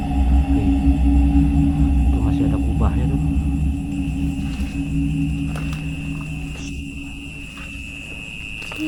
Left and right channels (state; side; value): identical; both; correlation 1.00